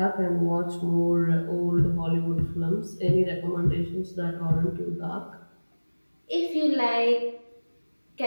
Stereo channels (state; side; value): inverted; both; correlation -1.00